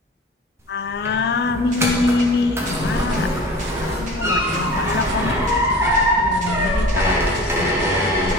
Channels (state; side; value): normal; both; correlation 0.40